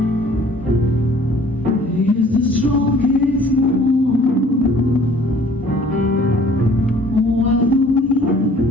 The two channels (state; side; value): normal; both; correlation 0.54